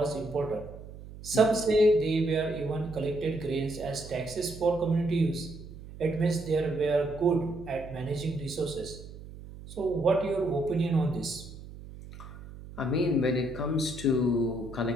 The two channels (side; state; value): right; noise; hum, 15 dB below the sound